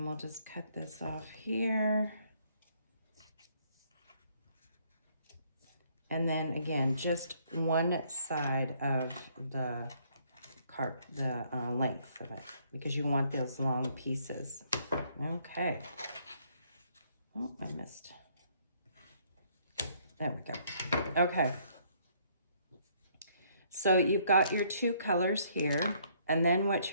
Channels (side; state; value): both; inverted; correlation -0.66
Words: we'll just cut this off here. And then again, just one side of the length of it because you want those long pieces. Okay. Oh, I missed. There we go. Okay. So you've got your 2 colors here. And then what